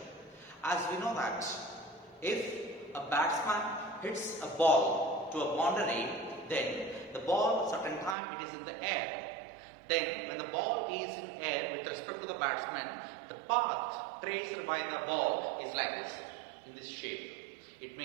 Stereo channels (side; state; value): left; drops out; at 8.2 s